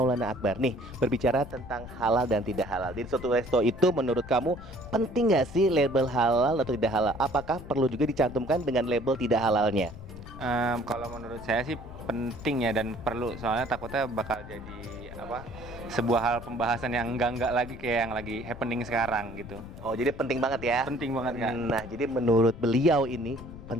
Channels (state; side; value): noise; left; rumble, 14 dB below the sound